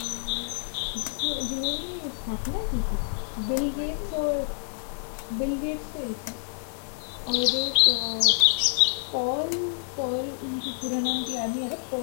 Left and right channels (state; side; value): silent; right; digital silence